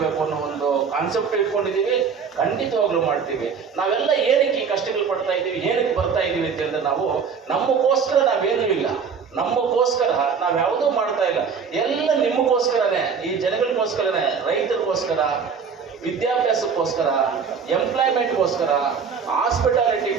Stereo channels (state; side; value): quieter; left; 6.1 dB